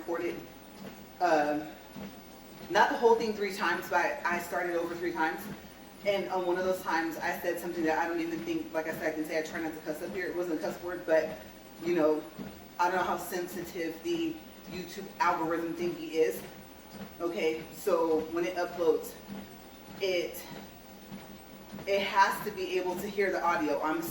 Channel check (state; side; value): identical; both; correlation 1.00